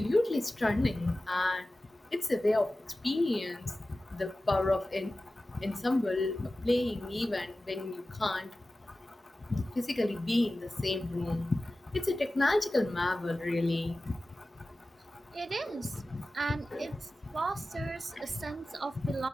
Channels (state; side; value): normal; both; correlation 0.95